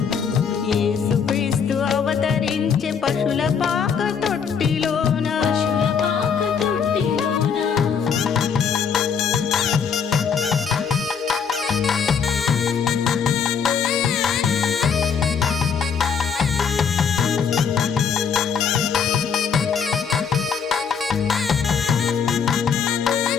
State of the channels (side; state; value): right; quieter; 6.6 dB